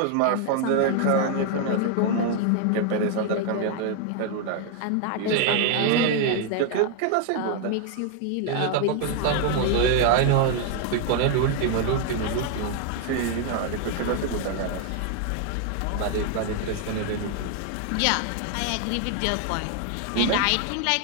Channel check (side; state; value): both; different; correlation 0.00